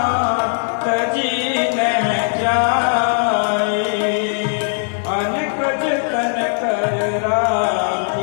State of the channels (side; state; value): right; silent; 67 dB below the other